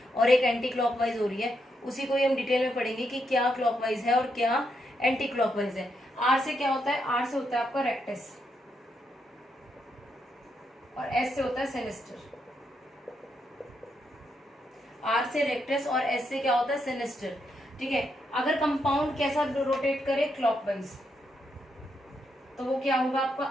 और एक एंटी क्लॉकवाइज हो रही है, उसी को ही हम डिटेल में पढ़ेंगे कि क्या क्लॉकवाइज है और क्या एंटी क्लॉकवाइज है। R से क्या होता है, R से होता है आपका रेक्टस और S से होता है सिनिस्टर। R से रेक्टस और S से क्या होता है, सिनिस्टर, ठीक है। अगर कंपाउंड कैसा रोटेट करे, क्लॉकवाइज, तो वो क्या होगा आपका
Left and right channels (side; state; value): both; normal; correlation 0.80